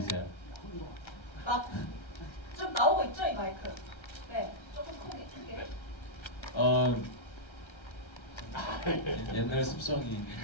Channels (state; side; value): late; right; 1.3 ms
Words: 좀 나오고 있죠, 이 마이크? 네, 조금 크게. 옛날 습성이